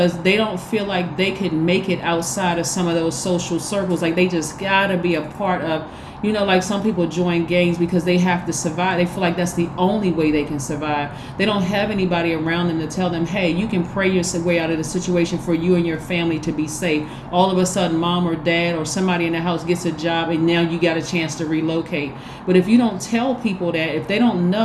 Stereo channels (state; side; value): identical; both; correlation 1.00